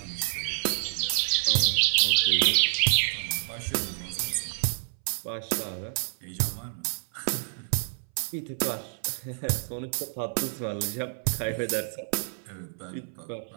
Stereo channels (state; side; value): silent; left; 59 dB below the other